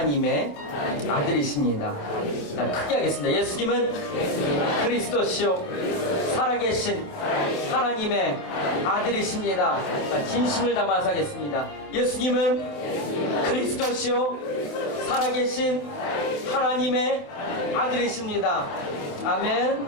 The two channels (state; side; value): late; right; 27 ms